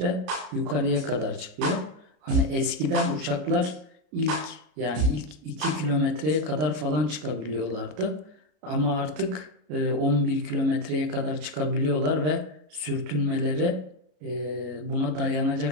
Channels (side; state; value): left; late; 33 ms